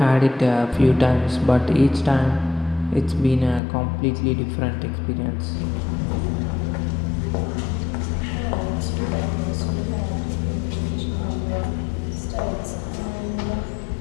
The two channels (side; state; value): right; drops out; at 3.6 s